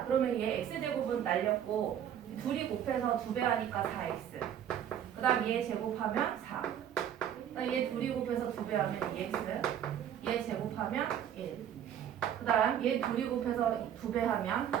그러면 얘 x제곱은 날렸고 둘이 곱해서 2배 하니까 4x. 그 다음 얘 제곱하면 4. 그다음 얘 둘이 곱해서 2배 하면 2x. 얘 제곱하면 1. 그 다음 얘 둘이 곱해서 2배 하면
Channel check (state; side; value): quieter; left; 9.8 dB